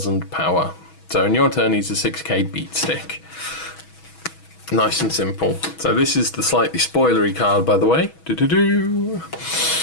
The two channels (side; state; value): right; late; 6.2 ms